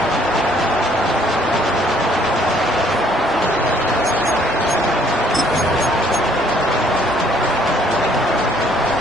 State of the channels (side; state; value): both; normal; correlation 0.63